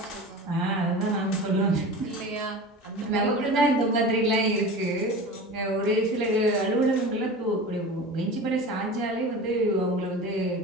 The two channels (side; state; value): both; normal; correlation 0.33